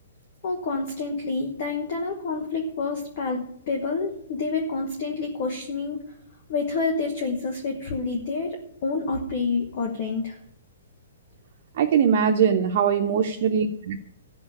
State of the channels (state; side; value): inverted; both; correlation -0.42